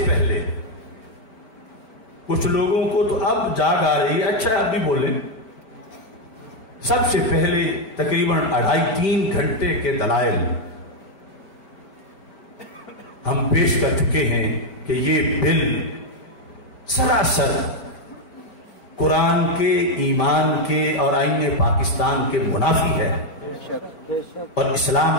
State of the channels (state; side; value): late; right; 5.1 ms